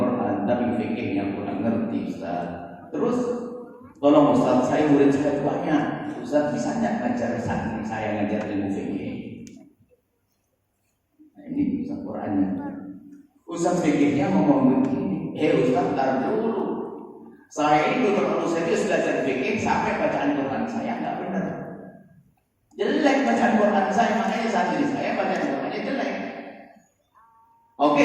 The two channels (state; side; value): identical; both; correlation 1.00